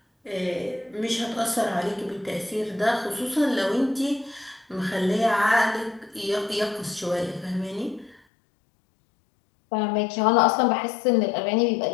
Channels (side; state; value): right; drops out; at 8.2 s